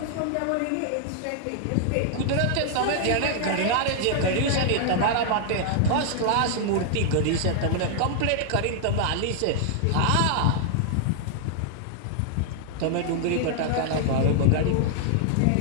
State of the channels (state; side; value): different; both; correlation 0.00